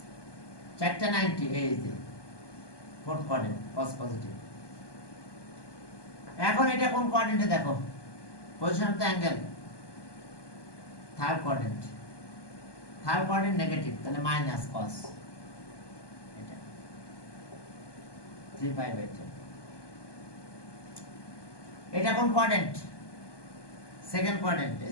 490, এই যে ফোর্থ কোয়াড্রেন্ট, cos পজিটিভ। এখন এটা কোন কোয়াড্রেন্টে দেখো? Position of the angle third quadrant negative, তাহলে মাইনাস cos এটা 3 pi by 10। এটা কোন কোয়াড্রেন্ট? সেকেন্ড কোয়াড্রেন্ট,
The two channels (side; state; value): right; late; 1.2 ms